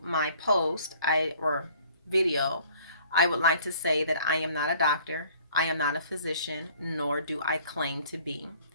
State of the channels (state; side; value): inverted; both; correlation -0.55